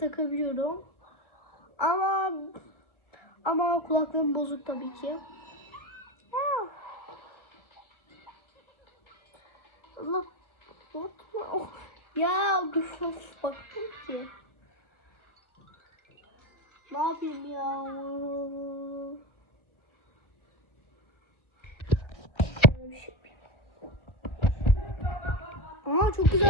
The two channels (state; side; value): late; right; 1.4 ms